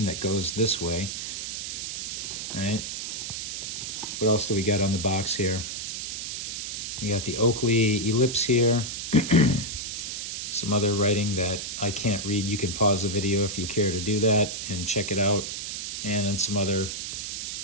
that goes this way. Right? What else do we got on the box here? You got the Oakley ellipse here. Some other writing that I can't read. You can pause the video if you care to do that and check it out. And then some other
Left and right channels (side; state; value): right; noise; hiss, 5 dB below the sound